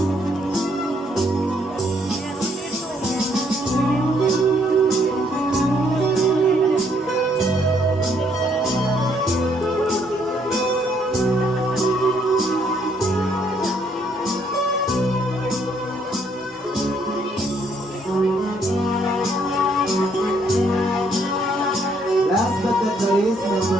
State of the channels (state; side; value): normal; both; correlation 0.68